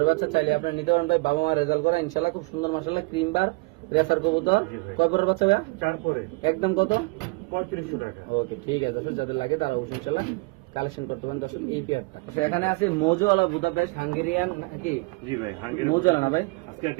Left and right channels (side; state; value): left; quieter; 28.5 dB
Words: বাচ্চা, চাইলে আপনি নিতে পারেন ভাই, বাবা মা রেজাল্ট করা ইনশাআল্লাহ খুব সুন্দর মাশাআল্লাহ ক্রিম বার রেসার কবুতর। কয় পরের বাচ্চা ভাই? 4 পরে। একদম কত? 3500 টাকা। ওকে ঠিক আছে দর্শক, যাদের লাগে তারা অবশ্যই ইনশাআল্লাহ কালেকশন করতে পারেন দর্শক এই পেয়ারটা। তো এখানে আছে মোজোওয়ালা বুদাপেস্ট হাঙ্গেরিয়ান নাকি? জি ভাই হাঙ্গেরিয়ান মোজোওয়ালা না ভাই? আজকে